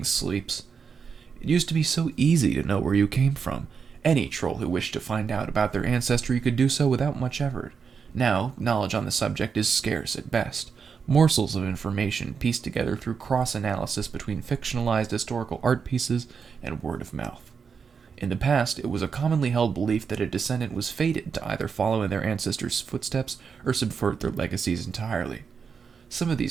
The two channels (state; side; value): quieter; left; 6.0 dB